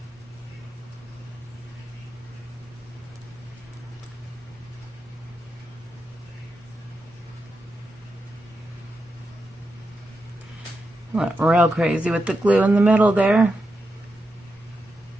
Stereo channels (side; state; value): both; normal; correlation 0.87